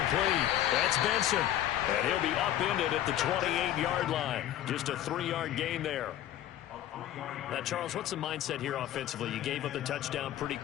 That's Benson. And he'll be upended at the 28-yard line. Just a 3-yard gain there. Now, Charles, what's the mindset here offensively? You gave up the touchdown pretty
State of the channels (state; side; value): quieter; right; 12.2 dB